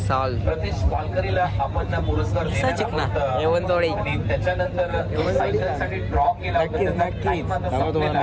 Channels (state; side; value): identical; both; correlation 1.00